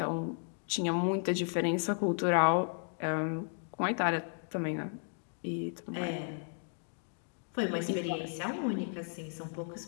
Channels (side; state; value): right; silent; 55 dB below the other